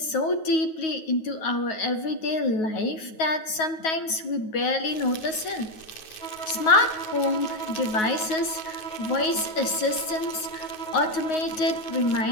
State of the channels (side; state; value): right; late; 9.4 ms